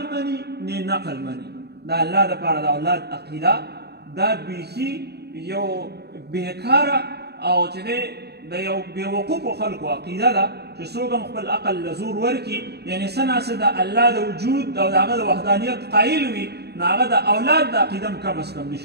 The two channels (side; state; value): left; late; 0.48 ms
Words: مني نه نقل مني. د الله دپاره د اولاد عقیده دا بیخي یو بېکاره او چې دی د یو بېوقوفو خلکو عقیده ده چې څوک هم خپل عقل له زور ورکړي، یعنې څه ناڅه د الله د وجود او د هغه د وحدانیت قایل وي، نو هغه د اولاد د عقیده هم کم از کم